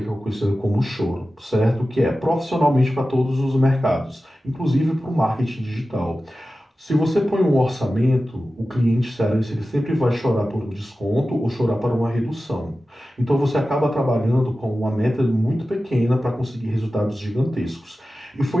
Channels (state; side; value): normal; both; correlation 0.94